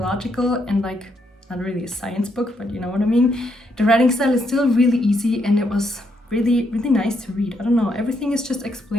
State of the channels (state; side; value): normal; both; correlation 0.76